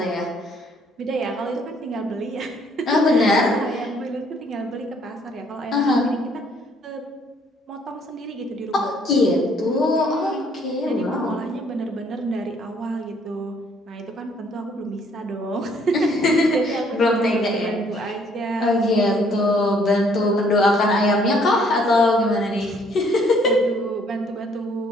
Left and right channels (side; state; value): both; normal; correlation 0.64